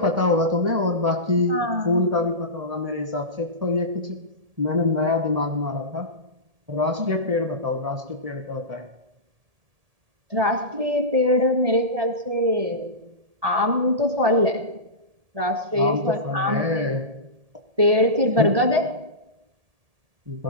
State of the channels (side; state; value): left; late; 1.7 ms